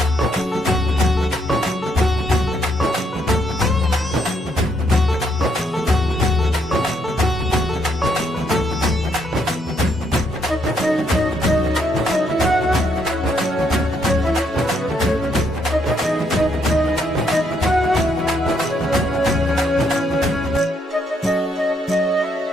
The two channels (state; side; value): normal; both; correlation 0.73